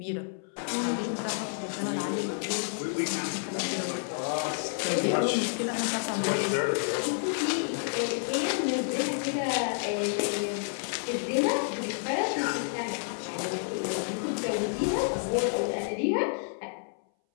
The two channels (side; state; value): right; silent; 58 dB below the other